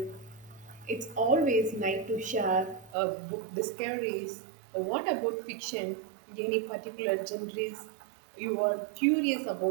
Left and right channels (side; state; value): left; drops out; at 3.0 s